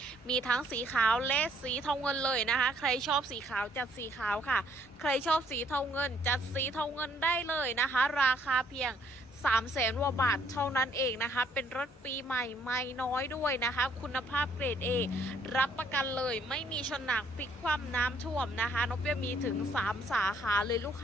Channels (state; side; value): normal; both; correlation 0.65